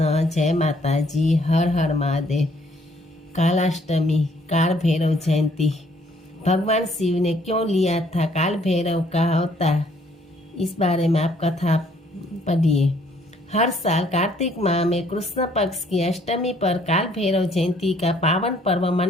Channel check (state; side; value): normal; both; correlation 0.64